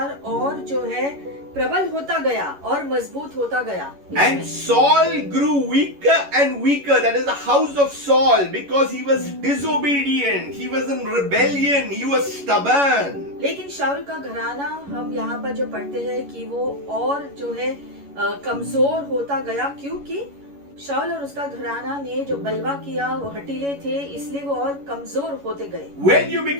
और जो है प्रबल होता गया और मजबूत होता गया. And Saul grew weaker and weaker, that is the house of Saul, because he was disobedient, he was in rebellion, he was stubborn. लेकिन शाऊल का घराना हम यहाँ पर जो पढ़ते हैं कि वो और जो है कमजोर होता गया, क्योंकि शाऊल और उसका घराना ने जो बलवा किया वो हटीले थे, इसलिए वो और कमजोर होते गए. When you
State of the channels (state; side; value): late; left; 11 ms